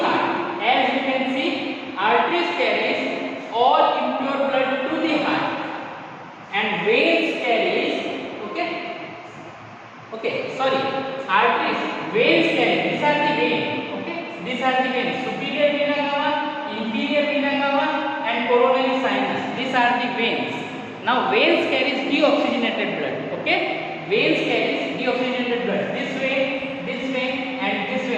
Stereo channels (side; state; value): both; identical; correlation 1.00